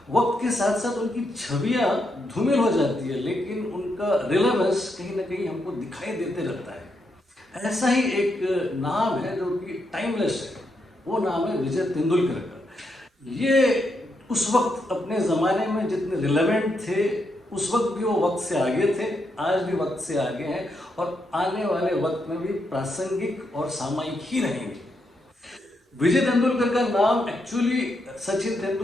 वक्त के साथ साथ उनकी छवियाँ धूमिल हो जाती है, लेकिन उनका रिलेवेंस कहीं ना कहीं हमको दिखाई देते रहता है। ऐसा ही एक नाम है जो कि टाइमलेस है, वो नाम है विजय तेंदुलकर का। ये उस वक्त अपने ज़माने में जितने रिलेवेंट थे, उस वक्त भी वो वक्त से आगे थे, आज भी वक्त से आगे हैं और आने वाले वक्त में भी प्रासंगिक और सामयिक ही रहेंगे। विजय तेंदुलकर का नाम एक्चुअली सचिन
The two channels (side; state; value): both; normal; correlation 0.81